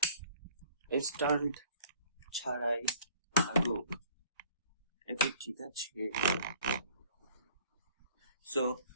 স্ট্যান্ড ছাড়াই থাকুক, এটা ঠিক আছে। সো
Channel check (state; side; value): inverted; both; correlation -0.53